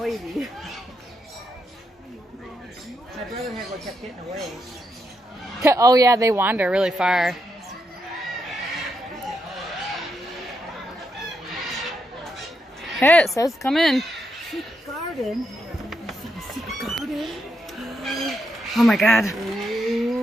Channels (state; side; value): normal; both; correlation 0.81